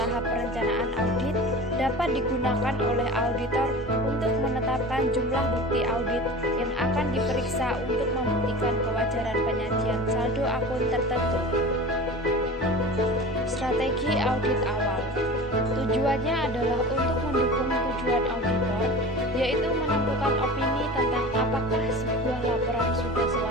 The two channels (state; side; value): normal; both; correlation 0.35